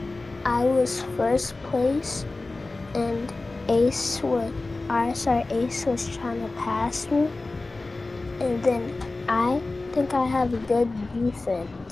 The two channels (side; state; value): right; quieter; 3.3 dB